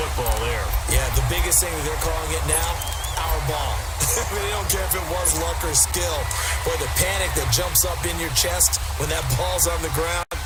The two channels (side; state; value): both; identical; correlation 1.00